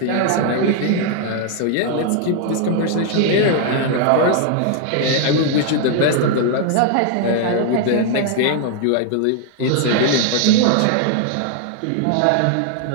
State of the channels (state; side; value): different; both; correlation 0.00